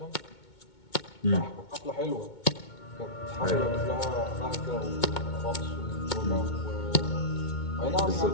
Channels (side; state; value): right; late; 2.2 ms